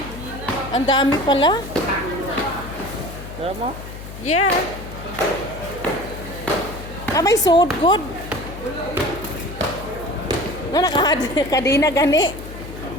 Ang dami pala. Tara mo? Yeah. May sold good. No, nakakadina gani.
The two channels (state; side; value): noise; left; hum, 12 dB below the sound